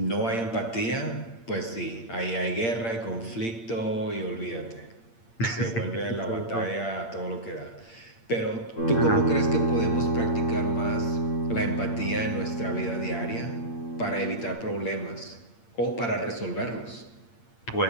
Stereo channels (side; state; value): right; late; 8.7 ms